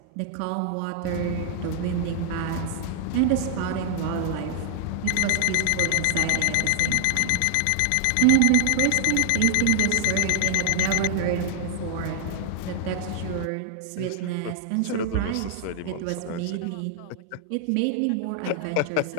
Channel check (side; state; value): both; different; correlation 0.00